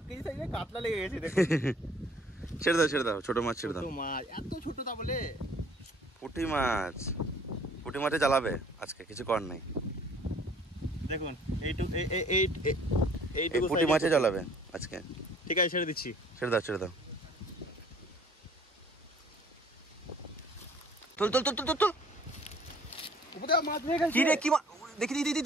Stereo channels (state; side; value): normal; both; correlation 0.55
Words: কেজি সাইজের কাতলা লেগে গেছে দেখো। ছেড়ে দাও ছেড়ে দাও, ছোট মাছ ছেড়ে দাও। ছোট মাছ, এত ছোট তা বলে? পুঁটি মাছ, পুঁটি মাছে জ্বালাবে আজকে, কিছু কর নাই। দেখুন এই পুঁটি মাছে জ্বালাবে আজকে। ঠিক আছে, ছেড়ে দিচ্ছি। ছেড়ে দাও ছেড়ে দাও। তোল তোল তোল তোল তোল। উপরে মাছ হয়ে গেছে। কি রে, কি দেখি দিদি